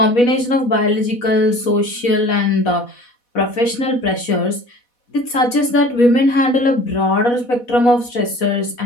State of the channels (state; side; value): late; right; 4.1 ms